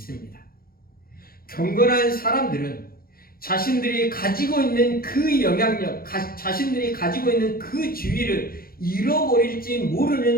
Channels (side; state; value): right; late; 0.43 ms